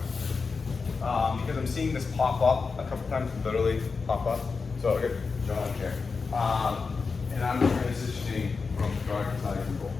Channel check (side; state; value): right; quieter; 4.7 dB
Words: Because I'm seeing this pop up a couple times, literally pop up. So I get John here. And I'm transitioning from guard to side control.